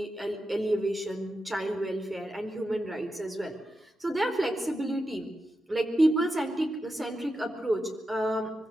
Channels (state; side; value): normal; both; correlation 0.89